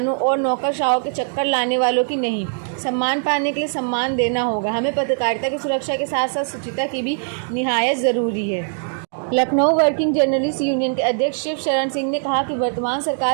और नौकरशाहों के चक्कर लाने वालों की नहीं। सम्मान पाने के लिए सम्मान देना होगा। हमें पत्रकारिता की सुरक्षा के साथ साथ शुचिता की भी निहायत ज़रूरी है। लखनऊ वर्किंग जर्नलिस्ट यूनियन के अध्यक्ष शिव शरण सिंह ने कहा कि वर्तमान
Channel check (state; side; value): silent; left; digital silence